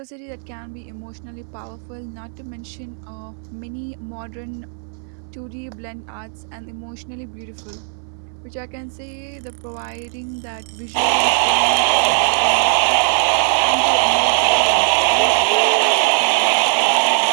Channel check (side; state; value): left; silent; 60 dB below the other